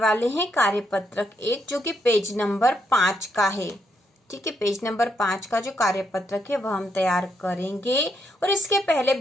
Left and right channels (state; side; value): normal; both; correlation 0.77